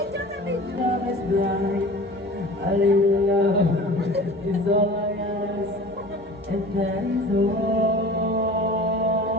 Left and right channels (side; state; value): both; normal; correlation 0.40